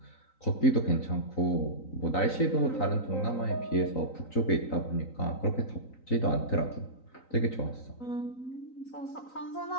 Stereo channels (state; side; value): late; right; 3.9 ms